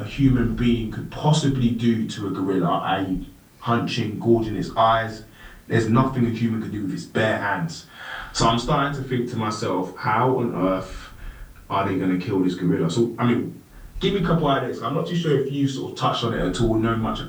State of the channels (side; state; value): both; identical; correlation 1.00